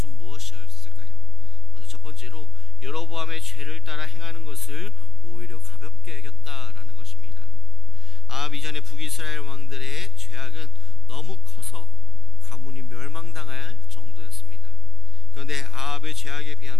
무엇이었을까요? 먼저 첫 번째로 여로보암의 죄를 따라 행하는 것을 오히려 가볍게 여겼다라는 것입니다. 아합 이전의 북이스라엘 왕들의 죄악은 너무 커서 가문이 멸망당할 정도였습니다. 그런데 아합의 죄악에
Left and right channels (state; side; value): normal; both; correlation 0.52